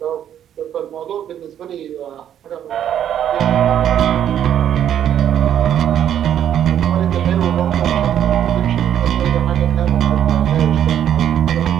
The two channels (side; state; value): left; quieter; 10.0 dB